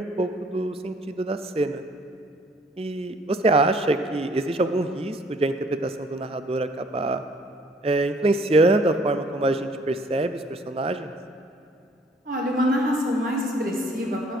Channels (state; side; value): normal; both; correlation 0.59